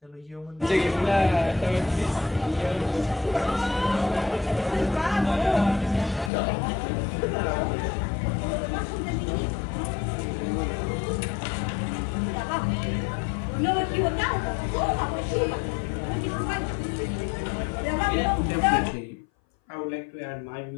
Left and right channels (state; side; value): drops out; right; at 6.3 s